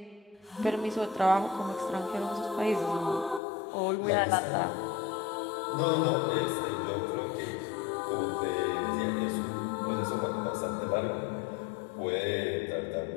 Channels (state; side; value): drops out; right; at 3.4 s